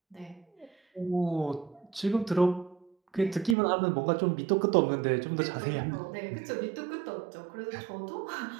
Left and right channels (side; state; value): left; drops out; at 3.6 s